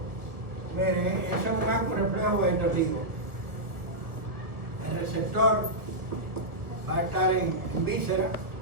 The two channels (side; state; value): left; late; 1.2 ms